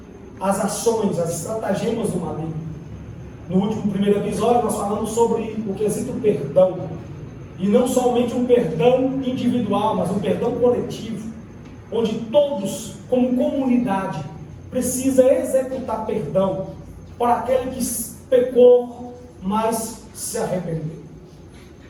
as ações, as estratagemas do maligno. No primeiro episódio, nós falamos sobre o quesito perdão. E não somente um perdão individual, mas um perdão coletivo, onde todos, como comunidade, precisa executar perdão para aquele que pecou, mas se arrependeu.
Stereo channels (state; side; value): identical; both; correlation 1.00